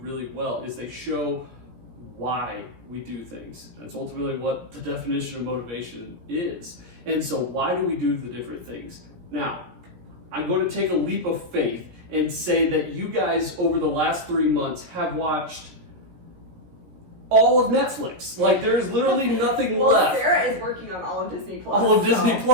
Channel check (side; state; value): left; late; 16 ms